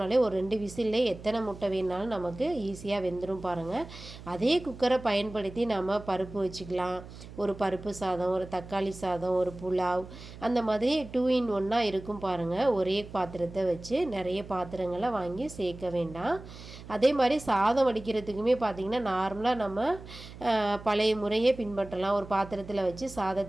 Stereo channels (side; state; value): right; noise; hum, 15 dB below the sound